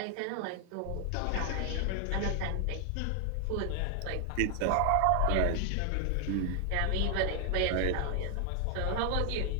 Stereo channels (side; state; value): both; different; correlation 0.00